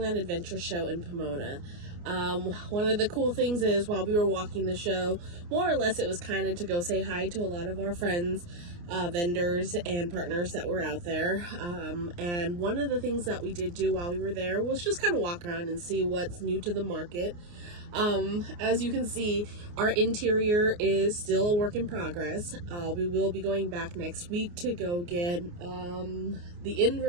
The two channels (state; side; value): late; left; 29 ms